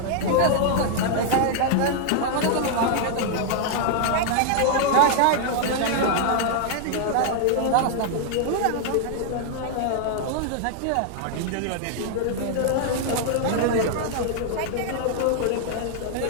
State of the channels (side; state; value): both; different; correlation 0.00